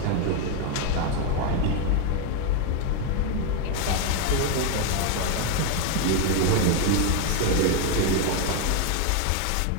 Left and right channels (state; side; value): different; both; correlation 0.01